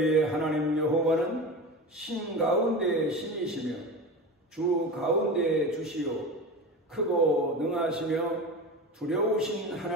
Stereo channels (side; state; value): both; normal; correlation 0.28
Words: 하나님 여호와는 신 가운데 신이시며 주 가운데 주시요 크고 능하시며 두려우신